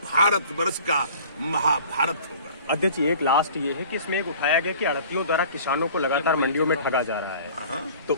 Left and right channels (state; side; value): inverted; both; correlation -0.47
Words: भारत वर्ष का महाभारत होगा। अध्यक्ष जी, एक लास्ट ये है कि इसमें एक उठाया गया कि आड़तियों द्वारा किसानों को लगातार मंडियों में ठगा जा रहा है, तो